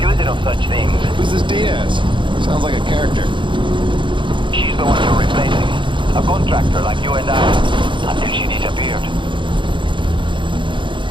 it of such things? Who's this Diaz? Sounds like a character. She's the one you're replacing. A contractor like you and I. Until she disappeared.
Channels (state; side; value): late; left; 0.23 ms